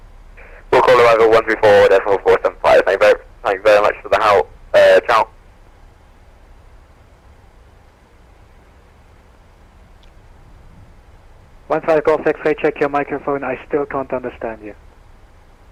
We'll call arrival 134.475. Thank you very much for the help. Ciao. One 5 Golf X-ray, check your microphone, I still can't understand you.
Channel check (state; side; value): identical; both; correlation 1.00